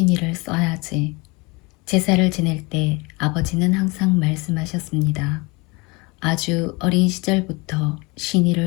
써야지. 제사를 지낼 때 아버지는 항상 말씀하셨습니다. 아주 어린 시절부터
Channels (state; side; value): quieter; right; 26.6 dB